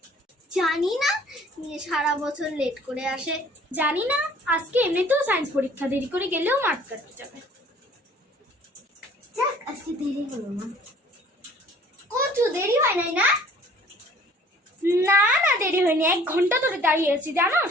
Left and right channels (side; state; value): both; normal; correlation 0.54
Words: জানি না, নিয়ে সারা বছর লেট করে আসে। জানি না, আজকে এমনিতেও সায়েন্স পরীক্ষা, দেরি করে গেলেও মাঠ কাটতে যাবে। যাক, আজকে দেরি হলো না। কত দেরি হয় নাই না? না না, দেরি হয়নি, 1 ঘন্টা ধরে দাঁড়িয়ে আছি